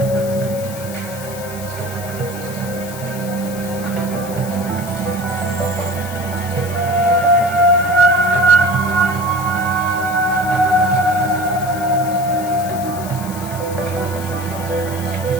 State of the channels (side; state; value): left; noise; hiss, 14 dB below the sound